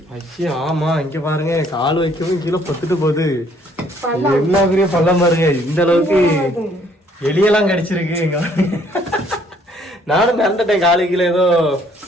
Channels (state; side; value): normal; both; correlation 0.63